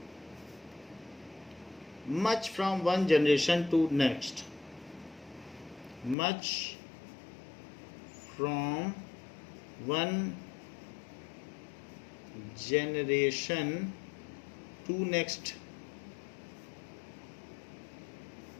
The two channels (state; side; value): drops out; right; at 6.2 s